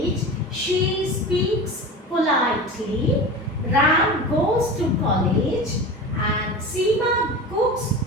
she speaks politely, Ram goes to college, and Seema cooks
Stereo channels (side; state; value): both; normal; correlation 0.31